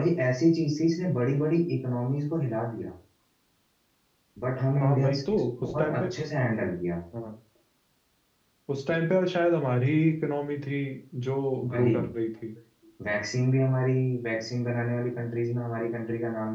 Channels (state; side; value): identical; both; correlation 1.00